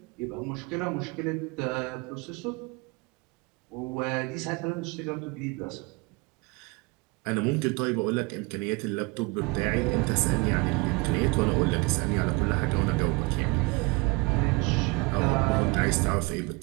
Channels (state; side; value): quieter; left; 26.3 dB